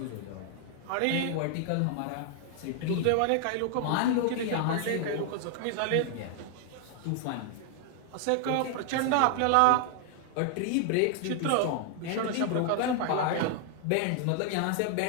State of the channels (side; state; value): both; different; correlation 0.00